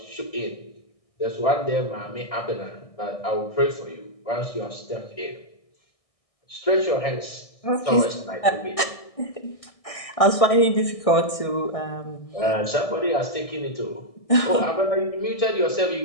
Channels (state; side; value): late; right; 1.6 ms